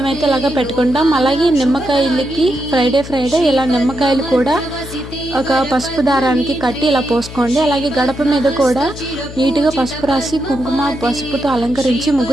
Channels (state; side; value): noise; left; hum, 13 dB below the sound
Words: ఇలాగ పెట్టుకుంటాం. అలాగే నిమ్మకాయలకి ఫ్రైడే ఇలా నిమ్మకాయలు కూడా ఒక పసుపు దారానికి కట్టి ఇలా పోసుకోండి. అలాగే గడప మీద కూడా నీట్గా పసుపు రాసి కుంకుమ పసుపుతో అలంకరించి